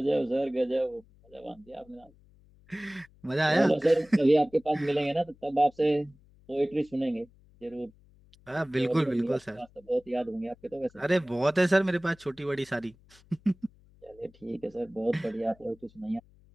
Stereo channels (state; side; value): noise; left; hum, 28 dB below the sound